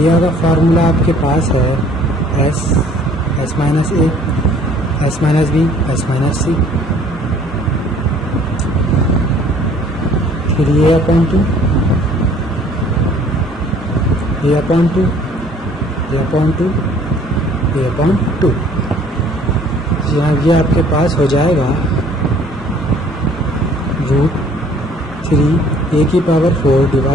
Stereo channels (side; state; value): both; normal; correlation 0.56